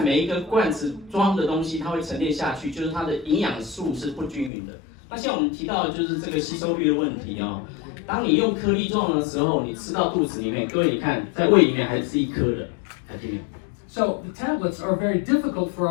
每一个罐子装的东西，它会沉淀下去，就是它的营养素是不均匀的。那像我们提到的就是这个吸收率的问题啊。当你用颗粒状的时候，你吃到肚子里面，各位你看在胃里面还是一颗的。So the tablets are very difficult for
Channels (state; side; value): drops out; right; at 4.5 s